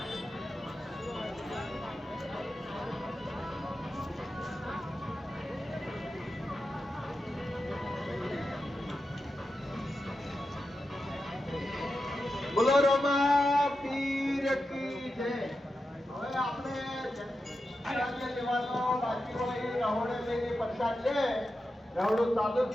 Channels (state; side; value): normal; both; correlation 0.90